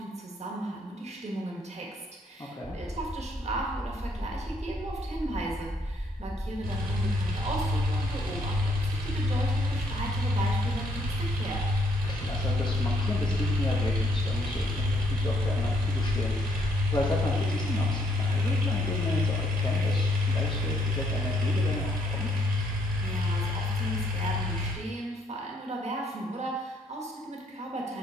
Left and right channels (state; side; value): normal; both; correlation 0.70